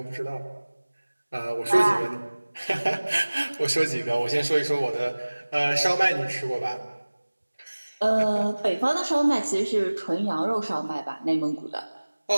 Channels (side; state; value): both; inverted; correlation -1.00